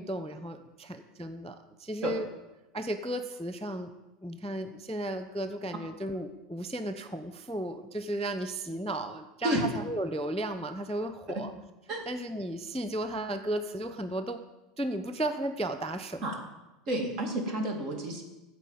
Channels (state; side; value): normal; both; correlation 0.50